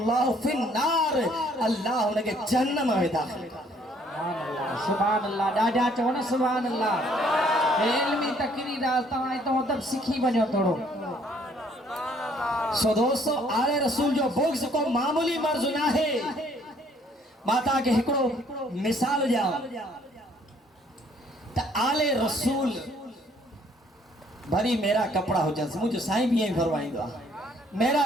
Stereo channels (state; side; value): normal; both; correlation 0.63